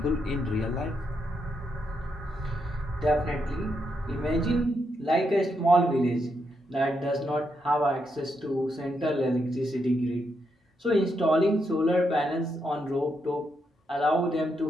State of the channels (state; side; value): normal; both; correlation 0.81